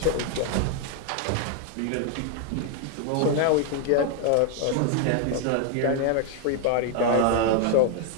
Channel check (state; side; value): different; both; correlation 0.00